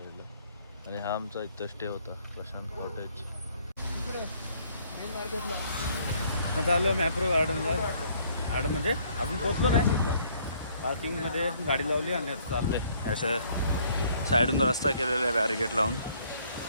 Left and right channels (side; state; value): both; inverted; correlation -0.63